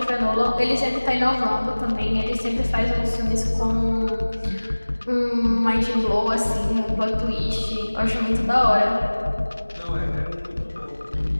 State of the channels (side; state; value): both; inverted; correlation -1.00